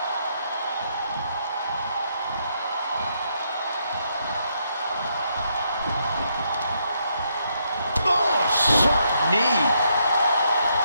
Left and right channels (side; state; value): both; inverted; correlation -0.76